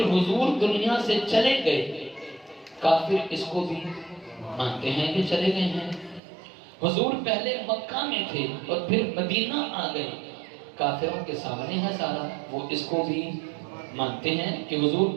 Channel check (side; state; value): left; drops out; at 6.2 s